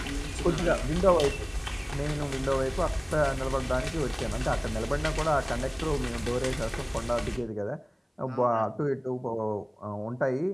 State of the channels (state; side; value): identical; both; correlation 1.00